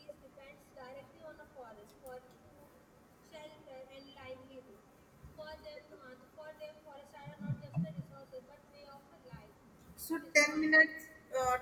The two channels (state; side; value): identical; both; correlation 1.00